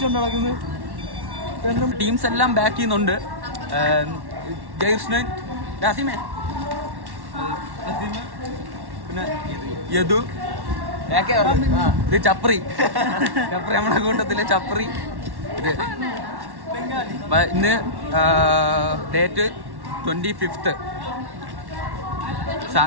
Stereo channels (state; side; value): late; left; 1.1 ms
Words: നടക്കുന്നത്. ടീംസ് എല്ലാം ബാക്ക് ചെയ്യുന്നുണ്ട്. ജയകൃഷ്ണൻ, അസീമേ, പിന്നെ യദു, ഇത് ചപ്രി നമ്മുടെ കൂട്ടത്തിലെ ചപ്രി. ഇത് ഇന്ന് ഡേറ്റ് 25th